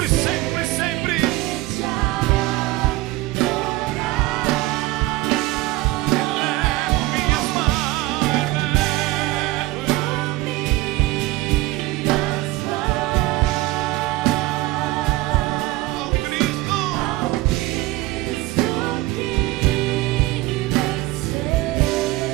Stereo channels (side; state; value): left; quieter; 18.9 dB